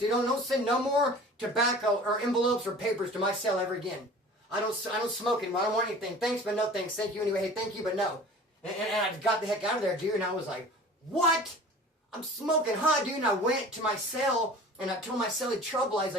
Don't send no more tobacco or envelopes or papers to my cell ever again. I don't smoke anymore. I don't want anything. Thanks, but no thanks. Thank you anyway. Hey, thank you, but no. And I got the heck out of there, dude. And I was like, what? I'm smoking hot, dude. And I went to my cell, and I told my cellie trouble. I was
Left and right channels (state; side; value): normal; both; correlation 0.42